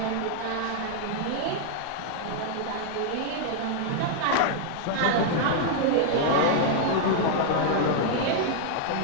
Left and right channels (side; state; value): both; different; correlation 0.00